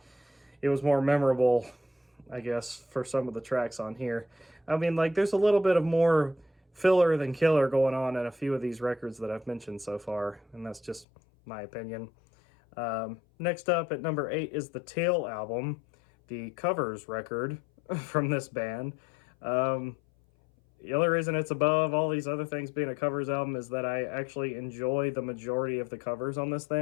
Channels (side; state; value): right; drops out; at 11.1 s